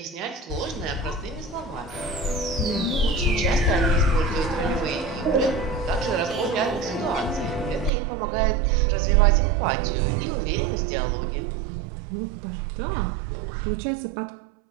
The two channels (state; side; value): drops out; left; at 7.9 s